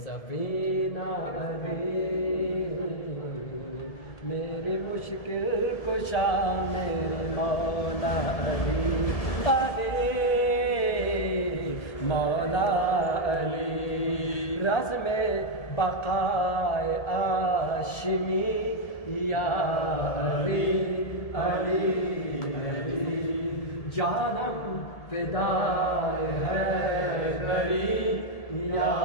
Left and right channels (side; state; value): right; late; 1.7 ms